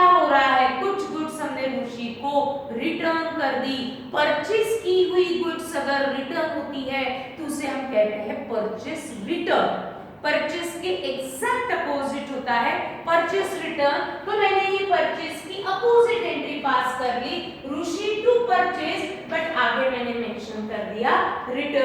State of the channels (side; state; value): both; identical; correlation 1.00